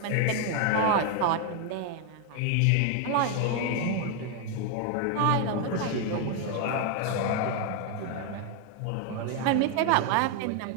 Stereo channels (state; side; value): different; both; correlation 0.01